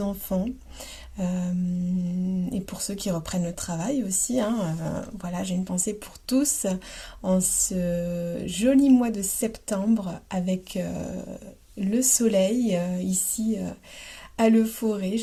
enfants. Et pour ceux qui reprennent le travail aussi, hein. Voilà, j'ai une pensée pour tous en ce joli mois de septembre avec le soleil ici à Le Forêt.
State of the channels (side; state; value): both; identical; correlation 1.00